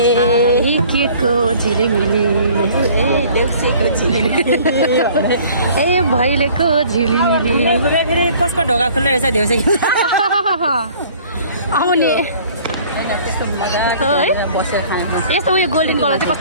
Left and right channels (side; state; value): both; inverted; correlation -0.52